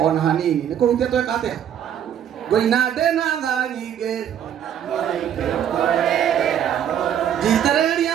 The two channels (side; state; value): left; quieter; 9.6 dB